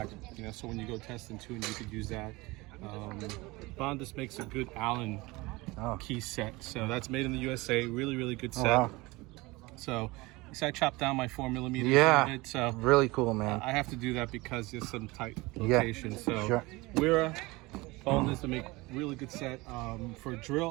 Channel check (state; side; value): quieter; left; 22.5 dB